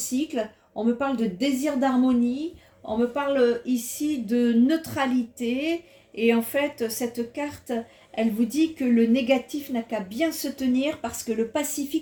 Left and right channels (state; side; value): identical; both; correlation 1.00